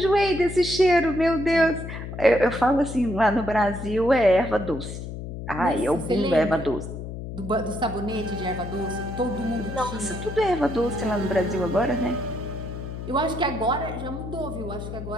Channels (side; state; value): left; noise; hum, 8 dB below the sound